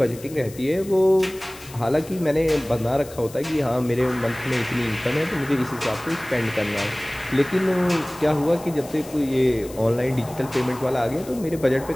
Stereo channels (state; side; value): noise; left; hiss, 19 dB below the sound